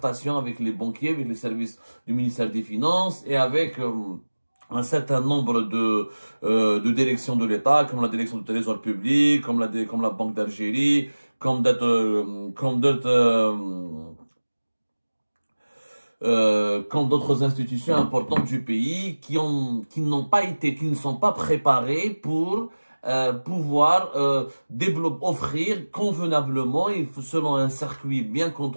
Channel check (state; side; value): inverted; both; correlation -1.00